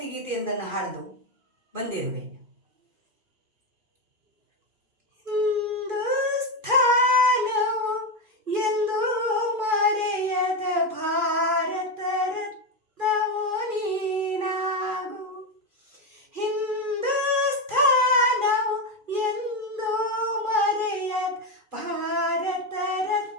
ಗೀತೆಯೊಂದನ್ನು ಹಾಡಲು ಬಂದಿರುವೆ.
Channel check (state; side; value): late; left; 2.4 ms